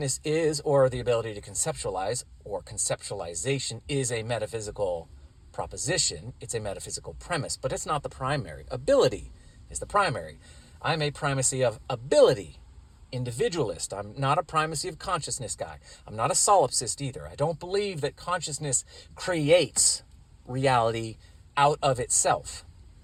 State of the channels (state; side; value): identical; both; correlation 1.00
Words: is, or the ability to conceptualize, or conceptualization, is a metaphysical proposition. It's a metaphysical premise, but it's not the primary. Ability is the primary. I'm a primacy of ability individualist. I'm not a primacy of consciousness guy. I'm not a solipsist either. I don't believe that consciousness creates reality out of itself.